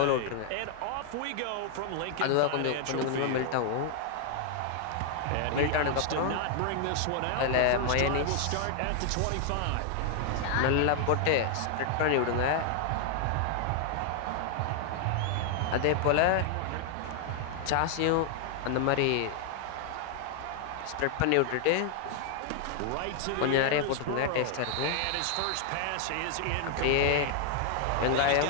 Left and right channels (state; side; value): different; both; correlation 0.00